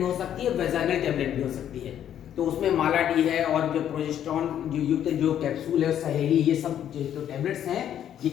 हो सकती है, वेजाइनल टेबलेट भी हो सकती है। तो उसमें माला डी है और जो प्रोजेस्टेरॉन जो युक्त जो कैप्सूल है, सहेली, ये सब जो टेबलेट्स हैं, ये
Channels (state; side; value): quieter; right; 10.2 dB